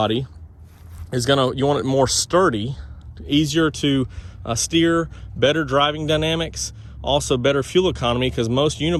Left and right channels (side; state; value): both; identical; correlation 1.00